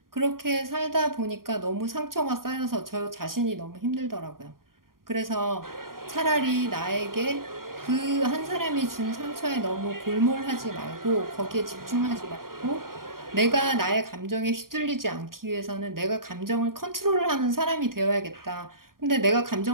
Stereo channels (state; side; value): late; left; 0.91 ms